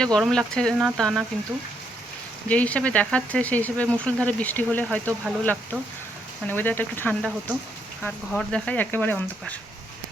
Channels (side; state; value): both; normal; correlation 0.75